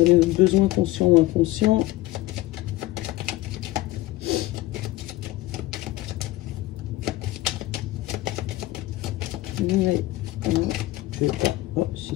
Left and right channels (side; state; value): right; quieter; 17.5 dB